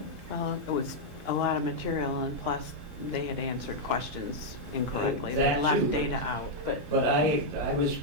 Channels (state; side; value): normal; both; correlation -0.04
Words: Well, it was a lot of material, and plus, they had answered questions incorrectly. They That left too. data out, but But I